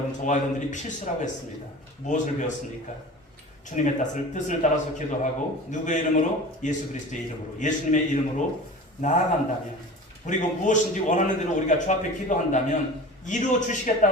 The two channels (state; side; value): normal; both; correlation 0.37